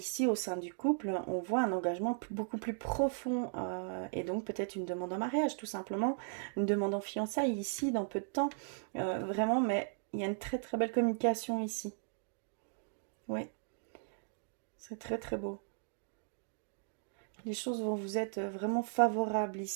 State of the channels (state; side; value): silent; left; digital silence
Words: au sein du couple, on voit un engagement beaucoup plus profond et donc peut-être une demande en mariage tout simplement, une demande en fiançailles ici dans peu de temps, vraiment, mais il y a une très très belle communication ici. Oui. C'est très très beau. Les choses vont vous être vraiment favorables